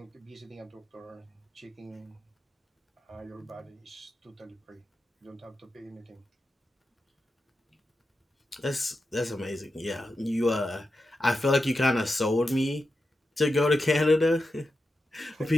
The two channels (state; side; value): normal; both; correlation 0.90